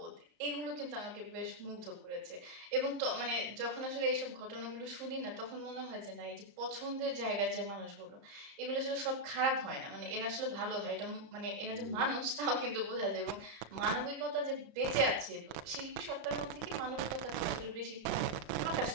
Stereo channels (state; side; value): late; left; 34 ms